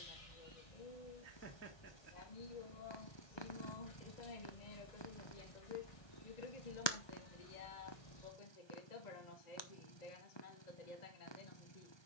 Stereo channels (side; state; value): right; late; 1.2 ms